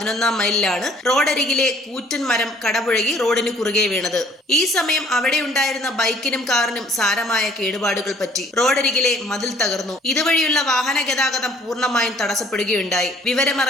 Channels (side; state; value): both; normal; correlation 0.58